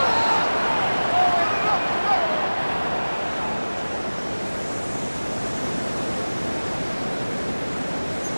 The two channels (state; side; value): inverted; both; correlation -1.00